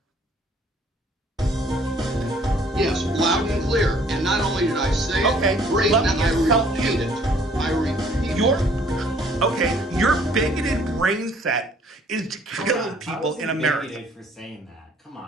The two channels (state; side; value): normal; both; correlation 0.59